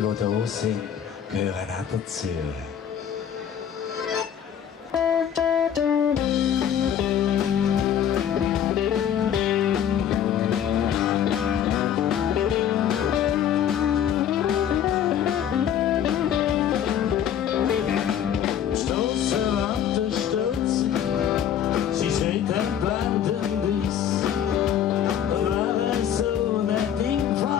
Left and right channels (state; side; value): quieter; right; 9.4 dB